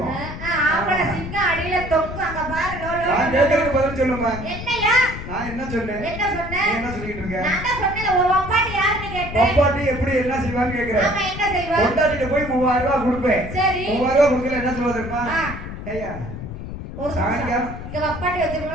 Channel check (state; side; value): noise; left; rumble, 9 dB below the sound